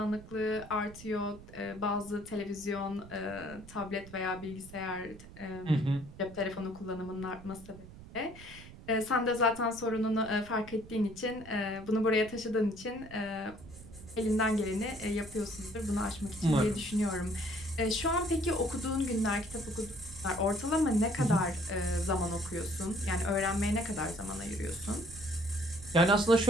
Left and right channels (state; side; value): noise; right; rumble, 17 dB below the sound